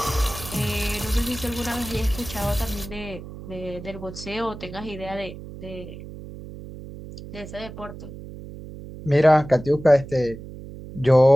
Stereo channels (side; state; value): right; noise; hum, 13 dB below the sound